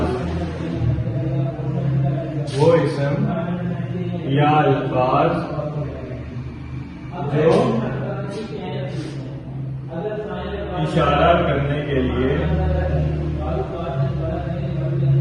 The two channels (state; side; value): identical; both; correlation 1.00